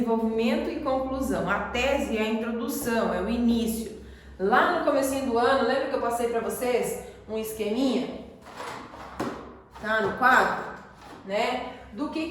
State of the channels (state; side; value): identical; both; correlation 1.00